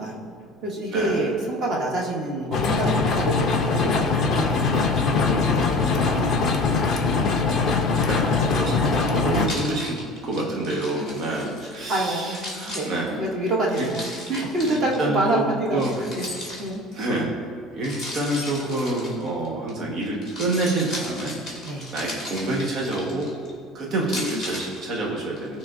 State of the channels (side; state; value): both; normal; correlation 0.38